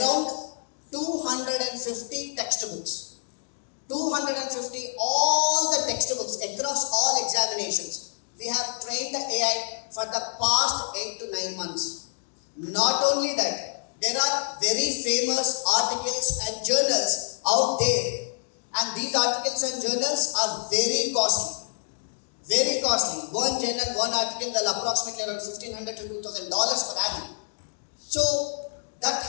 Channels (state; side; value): silent; right; digital silence